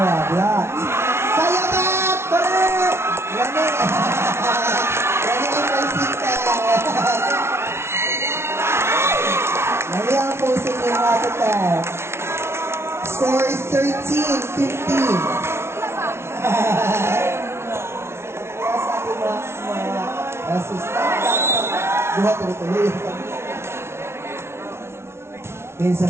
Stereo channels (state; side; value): late; left; 0.12 ms